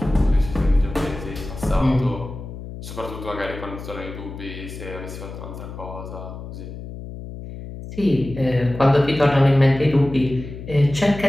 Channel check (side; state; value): left; noise; hum, 11 dB below the sound